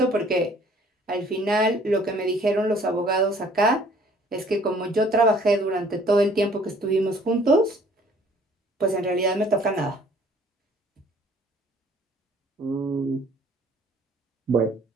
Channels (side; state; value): both; normal; correlation 0.57